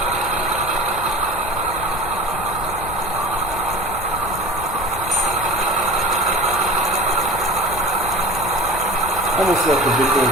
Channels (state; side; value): noise; left; rumble, 12 dB below the sound